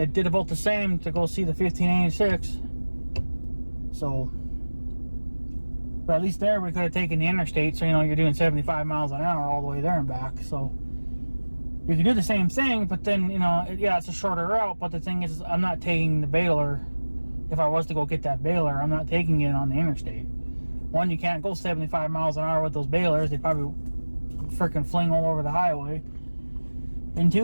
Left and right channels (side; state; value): both; inverted; correlation -1.00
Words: about the same to go see the 1586. So, but at least there we could have taken the interstate, so you know you're doing 75 miles an hour all the way there and back. So you can do the same thing, but then you know, yeah, it's a shorter route. But the thing is, I'm not taking the baler. If I was to go get that baler, I'm not taking it on the interstate. One, you can't go 75 miles an hour with those balers. They probably freaking fling all over the highway. And